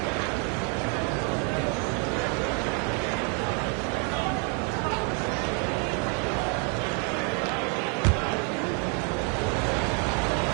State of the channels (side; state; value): left; quieter; 37.8 dB